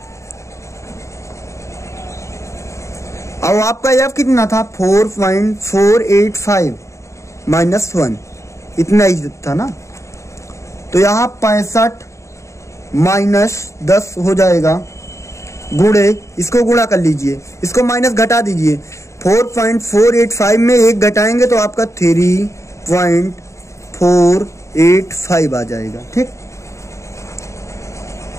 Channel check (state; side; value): late; right; 0.14 ms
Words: और आपका f कितना था 4.485 - 1, इतना ही था ना। तो यहाँ 65 - 10 हो जाएगा, गुणे, इसको गुणा कर लीजिए, इसको माइनस घटा दीजिए। 4.485 में 1 घटाएंगे तो आपका 3.485 आ जाएगा। ठीक,